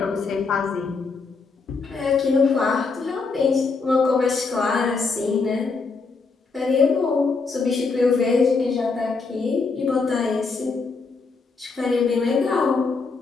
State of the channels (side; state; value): right; quieter; 4.4 dB